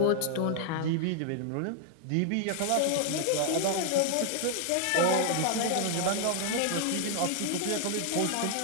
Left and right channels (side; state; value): both; different; correlation 0.00